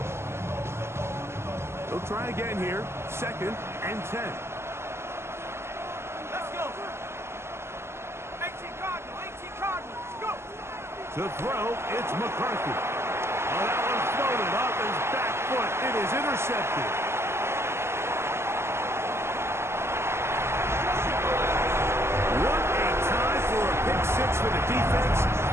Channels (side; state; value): left; late; 0.12 ms